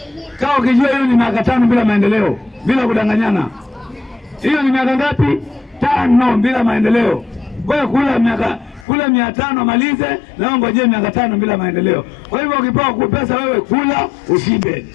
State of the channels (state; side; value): drops out; right; at 8.8 s